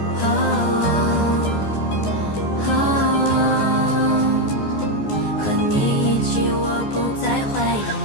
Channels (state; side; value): late; right; 14 ms